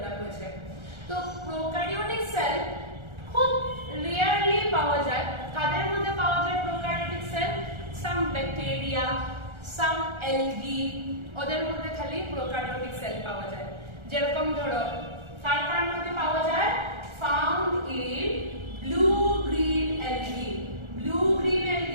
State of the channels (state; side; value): late; left; 1.4 ms